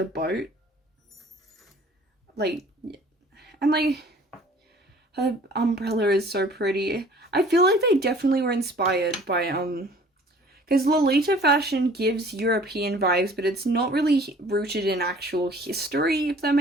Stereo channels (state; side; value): normal; both; correlation 0.51